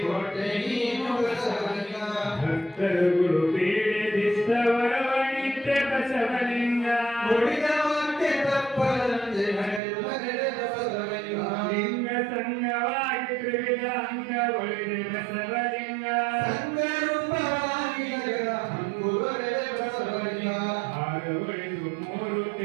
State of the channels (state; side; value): drops out; left; at 9.8 s